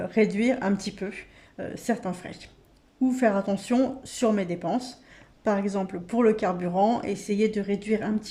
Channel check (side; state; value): both; identical; correlation 1.00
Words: réduire un petit peu certains frais ou faire attention sur mes dépenses. Par exemple, pour le carburant, essayer de réduire un